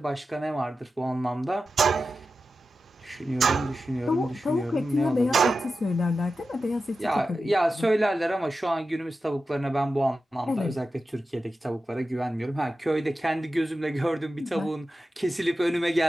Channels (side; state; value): both; normal; correlation 0.92